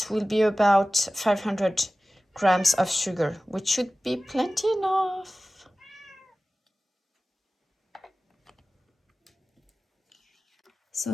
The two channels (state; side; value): normal; both; correlation 0.96